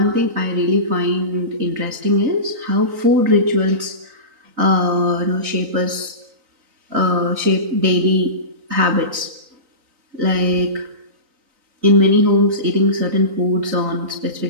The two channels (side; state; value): left; late; 3.9 ms